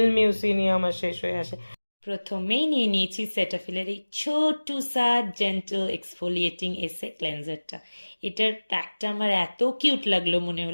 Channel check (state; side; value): inverted; both; correlation -1.00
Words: মিউসিনিয়াম আমার শেষ হয়ে আসে। প্রথমেই নিয়ে নিয়েছি সেটাফিলের এই ছোট্ট সা জেন্টল এক্সফোলিয়েটিং এসে ক্লেন্সারটা। এটার প্যাকটা আমার এত কিউট লাগলো, মনে